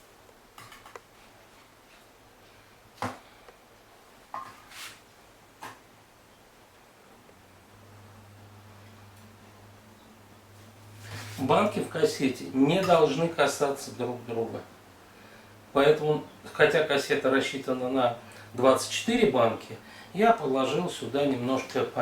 Банки в кассете не должны касаться друг друга. Поэтому, хотя кассета рассчитана на 24 банки, я положил сюда немножко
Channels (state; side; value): identical; both; correlation 1.00